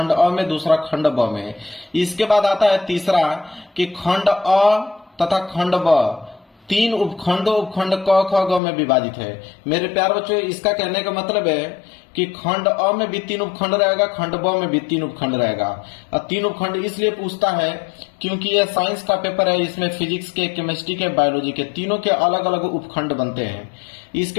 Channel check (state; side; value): drops out; right; at 8.6 s